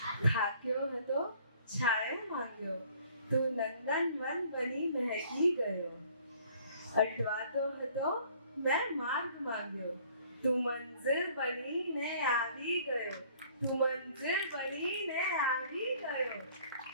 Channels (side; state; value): both; inverted; correlation -0.57